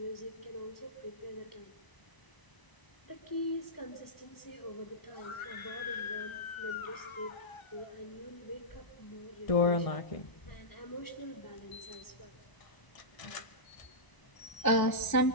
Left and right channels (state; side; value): late; right; 1.0 ms